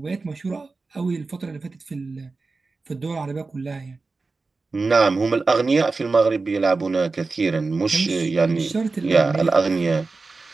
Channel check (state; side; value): quieter; left; 3.9 dB